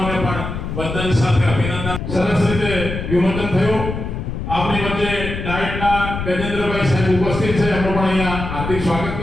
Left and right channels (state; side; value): noise; left; rumble, 6 dB below the sound